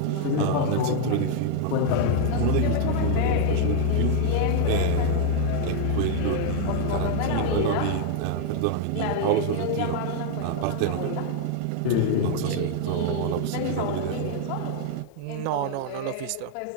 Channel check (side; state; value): both; different; correlation 0.00